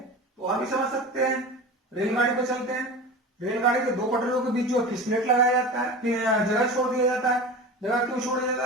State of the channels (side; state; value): both; normal; correlation 0.31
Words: और भी समझ सकते हैं। रेलगाड़ी पर चलते हैं, रेलगाड़ी के दो पटरियों के बीच जो फिसलेट लगाया जाता है, फिर जगह छोड़ दिया जाता है। जगह क्यों छोड़ दिया जाता